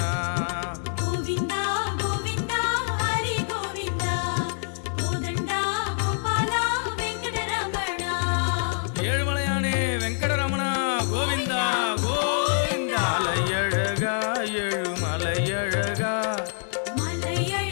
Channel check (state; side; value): silent; right; digital silence